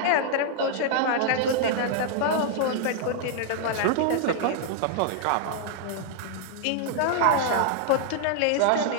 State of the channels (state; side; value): different; both; correlation -0.01